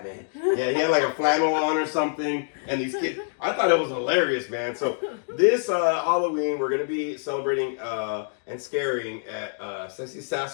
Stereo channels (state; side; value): silent; right; digital silence